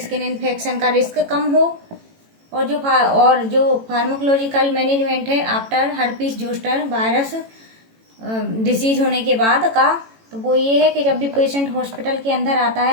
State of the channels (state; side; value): late; left; 18 ms